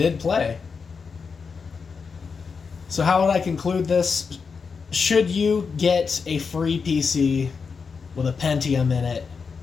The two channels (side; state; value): right; quieter; 5.4 dB